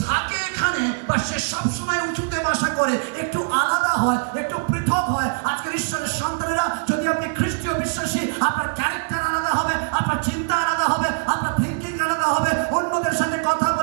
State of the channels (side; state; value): left; quieter; 38.9 dB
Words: থাকে এখানে, বা সে সবসময় উঁচুতে বাসা করে, একটু আলাদা হয়, একটু পৃথক হয়। আজকের ঈশ্বরের সন্তানেরা, যদি আপনি খ্রিস্টীয় বিশ্বাসী, আপনার ক্যারেক্টার আলাদা হবে, আপনার চিন্তা আলাদা হবে, আপনার থিঙ্কিং আলাদা হবে। অন্যদের সাথে কথা